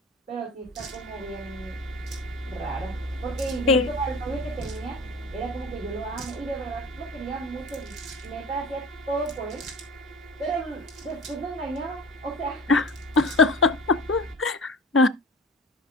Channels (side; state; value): both; normal; correlation 0.38